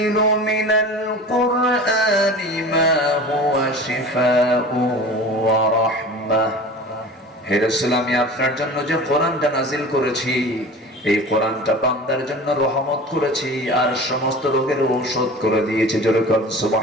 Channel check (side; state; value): both; normal; correlation 0.37